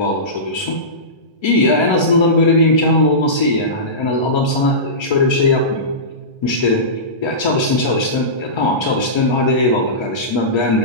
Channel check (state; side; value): late; right; 1.3 ms